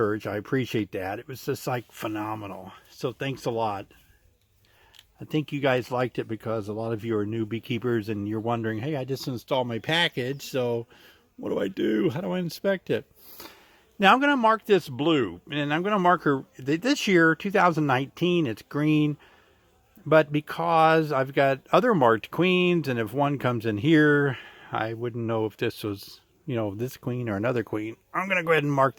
I appreciate that. It was just like phenomenal. So thanks a lot. I think you guys liked it because a lot of you are new beekeepers and you're wondering, hey, I just installed my package, so what do I do? How do I inspect it? Now I'm going to mark this blue, and I'm going to mark her this year, 2019, it's green. But because I've got other marked queens, and if one comes in here, I wouldn't know if this was, you know, this queen or another queen. I'm going to go ahead and mark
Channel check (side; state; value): both; identical; correlation 1.00